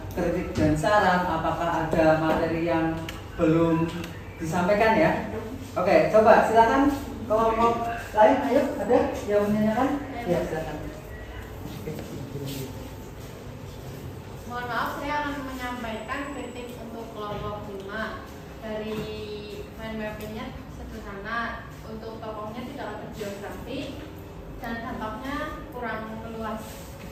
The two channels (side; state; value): both; identical; correlation 1.00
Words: kritik dan saran, apakah ada materi yang belum disampaikan ya. Oke, coba silakan kelompok lain, ayo ada yang menanyakan? Ya silakan. Mohon maaf, saya akan menyampaikan kritik untuk kelompok 5. Dari mind mappingnya sederhana, untuk tokohnya tidak ada geografi dan dampaknya kurang luas.